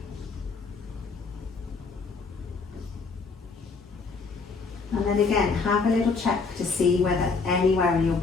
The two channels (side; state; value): right; quieter; 4.5 dB